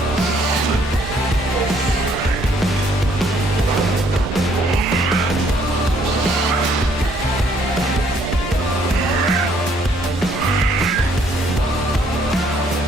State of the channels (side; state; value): both; normal; correlation 0.65